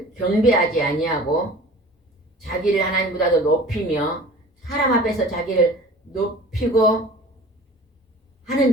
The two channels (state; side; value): normal; both; correlation 0.43